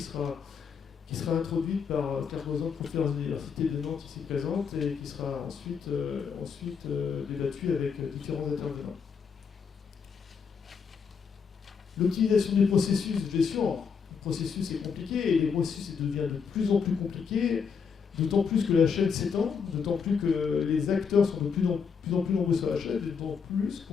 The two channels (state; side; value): quieter; right; 6.2 dB